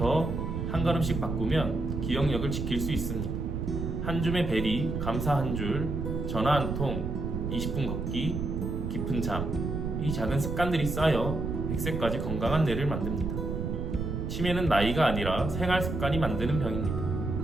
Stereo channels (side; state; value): right; noise; rumble, 3 dB below the sound